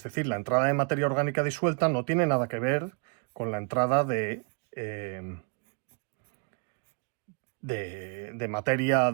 decir, la entrada de materia orgánica disuelta no tiene nada que ver con la entrada de materia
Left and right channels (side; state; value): left; quieter; 36.0 dB